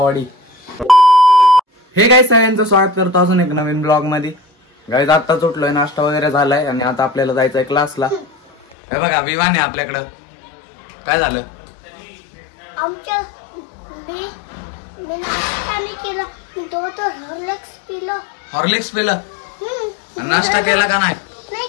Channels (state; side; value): drops out; right; at 8.8 s